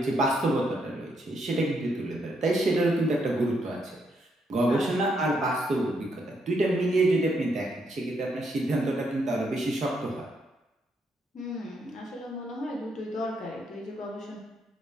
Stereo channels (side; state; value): both; normal; correlation 0.76